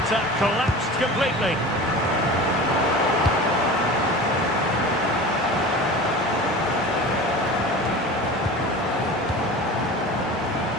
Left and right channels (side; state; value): both; normal; correlation 0.35